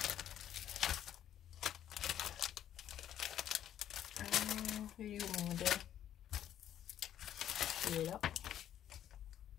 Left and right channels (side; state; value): right; quieter; 10.8 dB